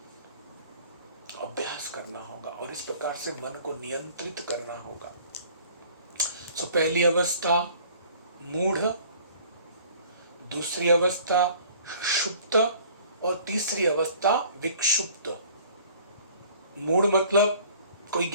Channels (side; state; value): both; inverted; correlation -0.51